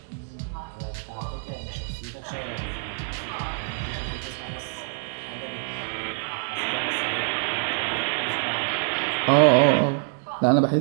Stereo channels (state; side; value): silent; left; 61 dB below the other